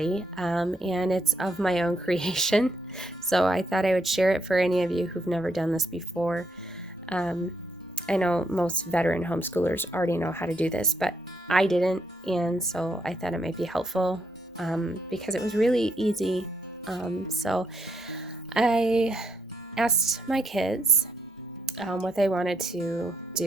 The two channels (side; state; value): both; normal; correlation 0.75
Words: and it's of my own creation. So I thought I would share it for any of you who've never done this before. I know most veteran homeschoolers already know how to do this, but I didn't, and so I thought it might be helpful because it was really easy. So I asked my kids what they wanted to